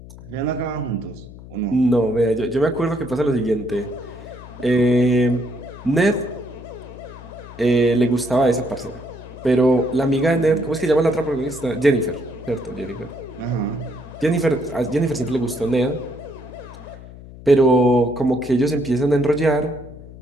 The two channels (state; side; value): noise; left; hum, 17 dB below the sound